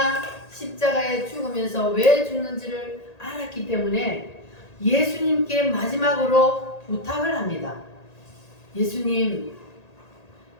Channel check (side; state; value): right; late; 1.8 ms